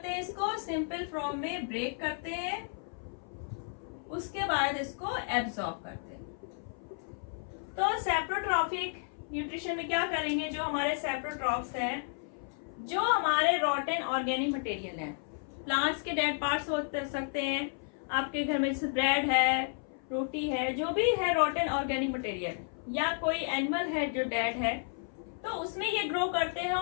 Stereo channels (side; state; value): right; silent; 56 dB below the other